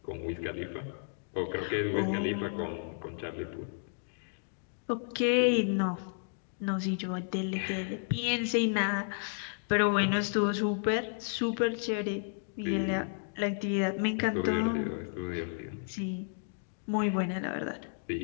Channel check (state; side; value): silent; right; digital silence